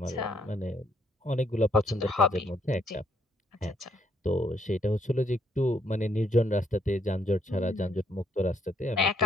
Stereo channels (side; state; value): both; normal; correlation 0.71